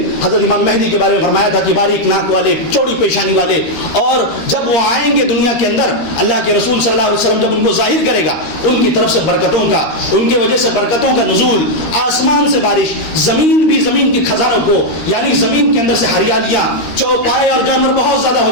حضرت امام مہدی کے بارے میں فرمایا تھا کہ باریک ناک والے، چوڑی پیشانی والے، اور جب وہ آئیں گے دنیا کے اندر، اللہ کے رسول صلی اللہ علیہ وسلم جب ان کو ظاہر کرے گا، ان کی طرف سے برکتوں کا، ان کی وجہ سے برکتوں کا نزول، آسمان سے بارش، زمین کے خزانوں کو، یعنی زمین کے اندر سے ہریالیاں، چوپائے اور جانور بہت زیادہ ہو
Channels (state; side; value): late; right; 13 ms